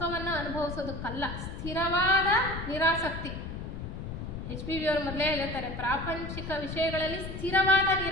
ಅನುಭವಿಸೋದಕ್ಕಲ್ಲ, ಸ್ಥಿರವಾದ ನಿರಾಸಕ್ತಿ. HPV ಅವರು ಮೊದಲೇ ಹೇಳ್ತಾರೆ, ಪ್ರಾಪಂಚಿಕ ವಿಷಯಗಳಲ್ಲಿ ಸ್ಥಿರವಾದ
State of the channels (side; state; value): left; noise; rumble, 7 dB below the sound